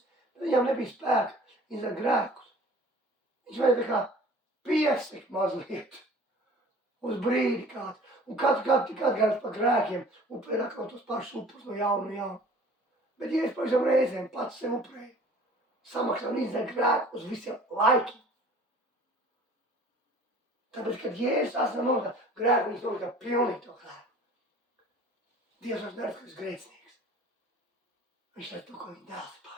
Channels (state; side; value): normal; both; correlation 0.48